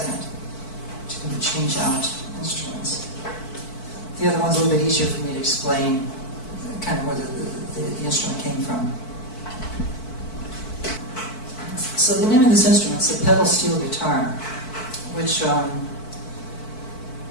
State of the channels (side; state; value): right; late; 4.5 ms